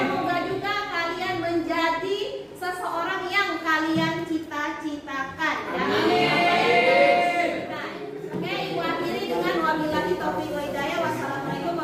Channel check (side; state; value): both; identical; correlation 1.00